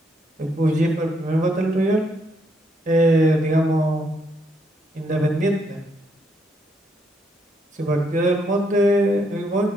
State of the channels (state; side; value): normal; both; correlation 0.74